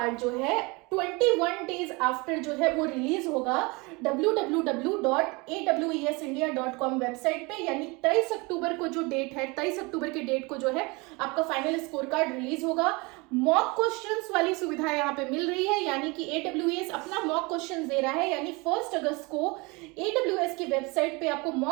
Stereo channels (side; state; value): left; quieter; 26.6 dB